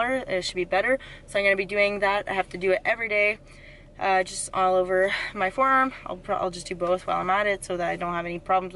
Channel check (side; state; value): both; identical; correlation 1.00